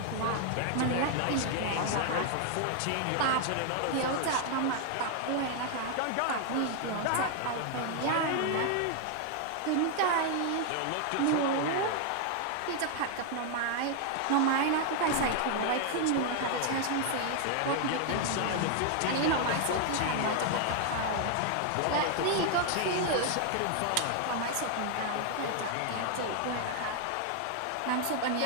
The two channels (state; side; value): different; both; correlation 0.00